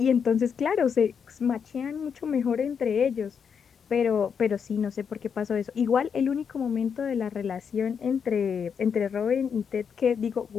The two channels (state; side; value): quieter; right; 6.8 dB